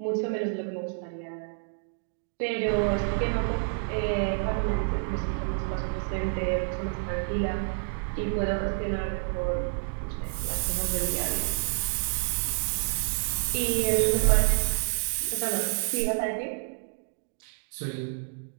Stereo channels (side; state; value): left; silent; digital silence